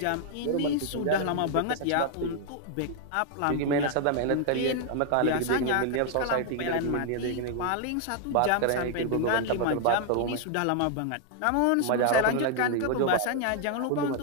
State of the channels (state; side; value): different; both; correlation 0.00